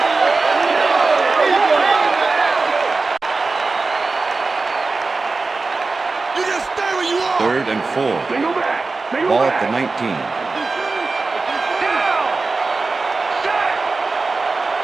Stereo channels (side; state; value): left; quieter; 3.8 dB